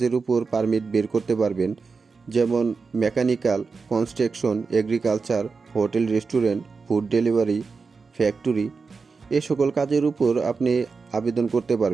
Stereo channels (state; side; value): quieter; left; 4.7 dB